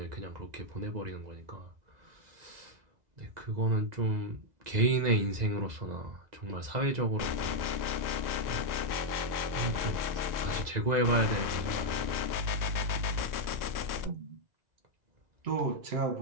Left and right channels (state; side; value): late; left; 2.0 ms